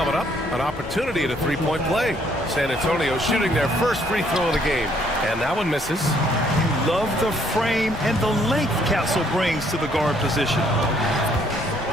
up. An opportunity at a three-point play. San Antonio shooting their first free throw of the game. And that one misses. You love the frame and the length Castle brings to the guard position.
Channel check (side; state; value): left; noise; rumble, 14 dB below the sound